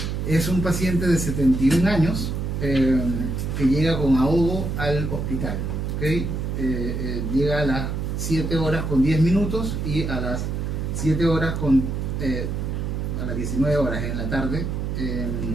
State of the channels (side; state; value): right; noise; hum, 2 dB below the sound